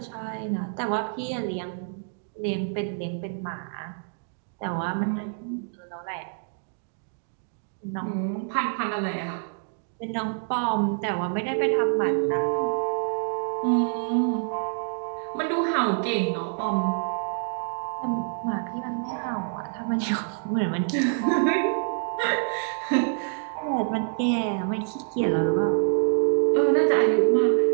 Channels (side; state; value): left; silent; digital silence